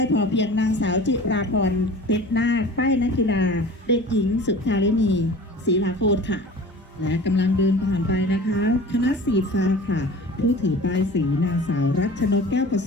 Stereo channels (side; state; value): both; normal; correlation 0.40